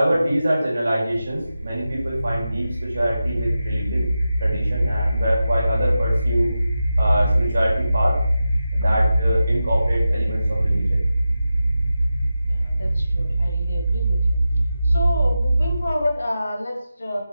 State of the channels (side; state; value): both; inverted; correlation -0.92